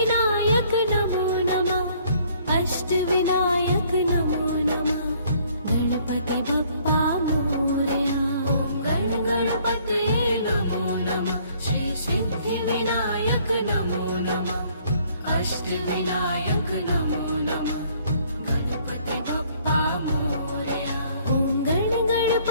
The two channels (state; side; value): inverted; both; correlation -0.61